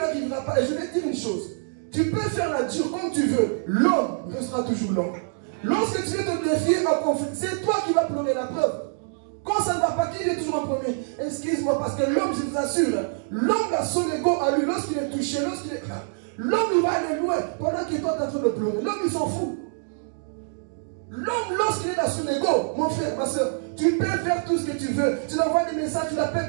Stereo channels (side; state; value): left; silent; digital silence